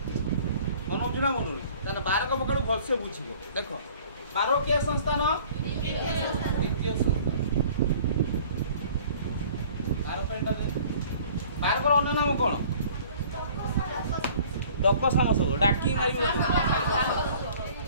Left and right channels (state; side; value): inverted; both; correlation -0.50